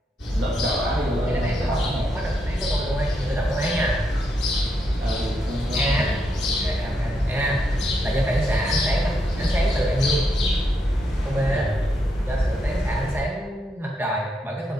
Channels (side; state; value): both; normal; correlation 0.80